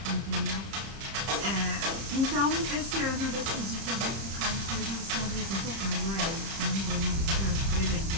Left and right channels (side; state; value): left; late; 31 ms